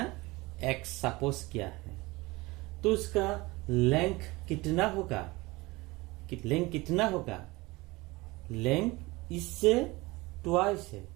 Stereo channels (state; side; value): quieter; left; 22.1 dB